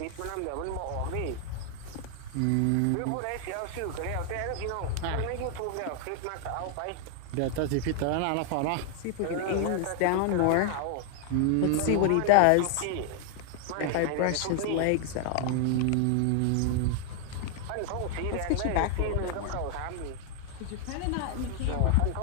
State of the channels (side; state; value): both; different; correlation 0.00